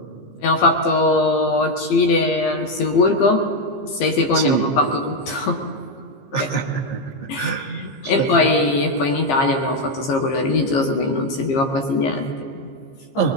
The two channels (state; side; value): late; right; 15 ms